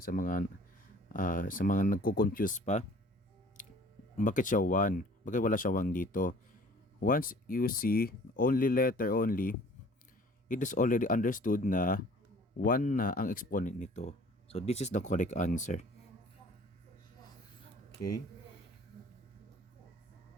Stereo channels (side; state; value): both; normal; correlation 0.51